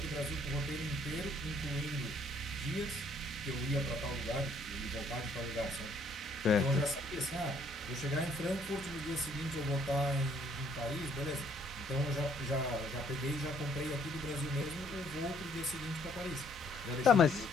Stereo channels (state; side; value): normal; both; correlation 0.64